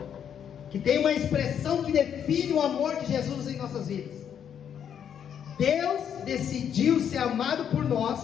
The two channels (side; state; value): right; quieter; 8.6 dB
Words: que tem uma expressão que define o amor de Jesus em nossas vidas. Deus decidiu ser amado por